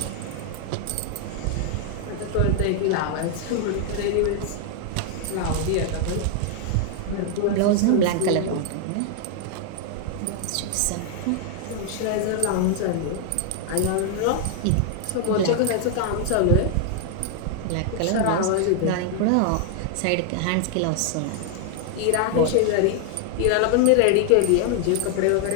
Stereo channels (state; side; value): different; both; correlation 0.00